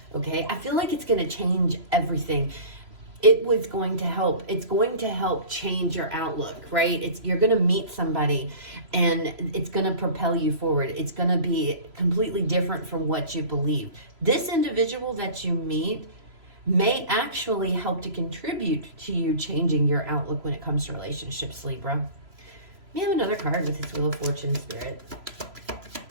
okay? I feel like it's going to change everything. It was going to help. It's going to help change your outlook, right? You're going to meet somebody and it's going to propel you forward. It's going to be completely different from what you believe. This individual that you meet may actually help to contribute to you changing your outlook when it comes to relationships, Libra. We have another card with this Wheel of Fortune, Spirit.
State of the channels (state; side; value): late; left; 3.0 ms